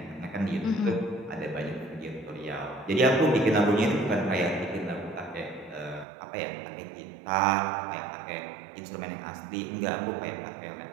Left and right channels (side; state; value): left; drops out; at 6.1 s